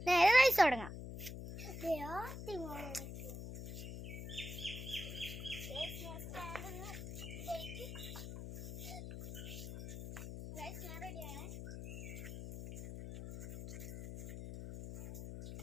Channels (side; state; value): left; noise; hum, 8 dB below the sound